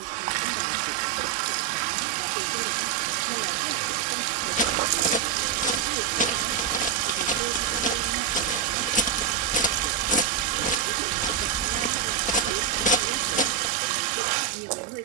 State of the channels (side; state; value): left; quieter; 7.7 dB